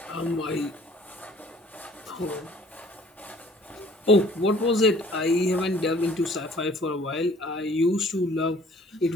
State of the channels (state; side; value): normal; both; correlation 0.54